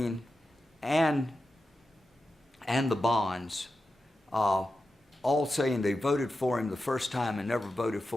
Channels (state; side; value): normal; both; correlation 0.91